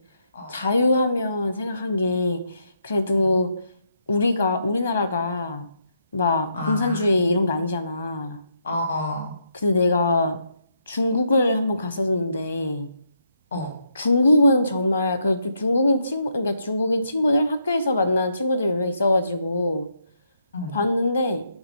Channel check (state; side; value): inverted; both; correlation -0.78